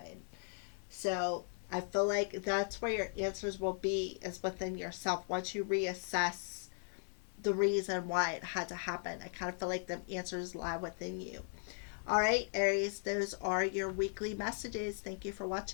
So I feel like that's where your answers will be, is within yourself. Once you reassess the reason why it had to happen, I kind of feel like the answers lie within you. All right, Aries, those are your weekly messages. Thank you for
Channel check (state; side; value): silent; right; 53 dB below the other